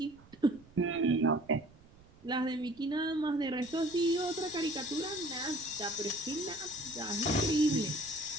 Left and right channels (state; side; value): noise; right; rumble, 24 dB below the sound